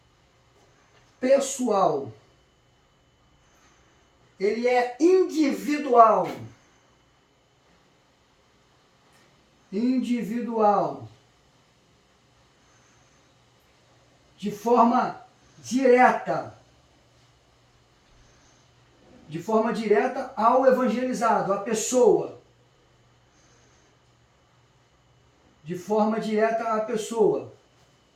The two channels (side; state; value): both; identical; correlation 1.00